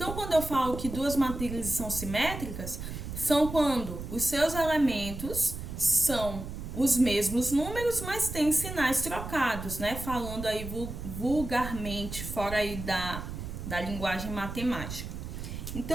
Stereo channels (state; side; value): noise; right; rumble, 8 dB below the sound